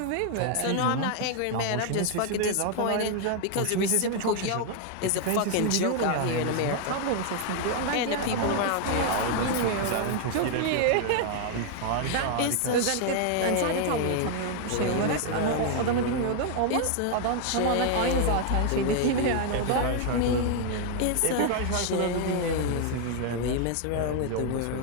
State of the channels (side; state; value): both; different; correlation 0.00